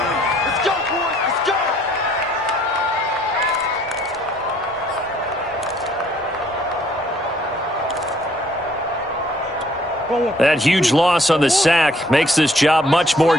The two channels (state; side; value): normal; both; correlation 0.62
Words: go, boys. Let's go. That huge loss on the sack makes this job much more